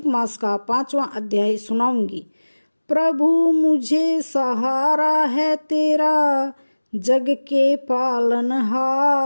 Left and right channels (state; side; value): inverted; both; correlation -1.00